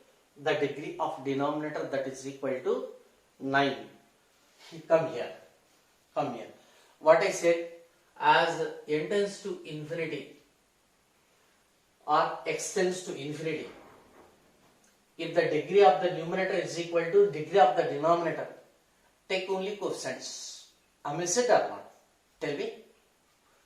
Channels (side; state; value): both; identical; correlation 1.00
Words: the degree of denominator, that is equal to 9. Come here. What I said, as n tends to infinity or x tends to infinity, if the degree of the numerator is equal to degree of the denominator, take only coefficients. Am I it or not? Tell me.